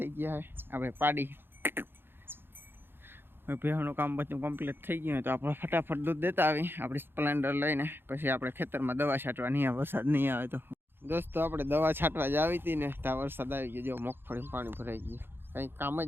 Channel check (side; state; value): left; late; 0.10 ms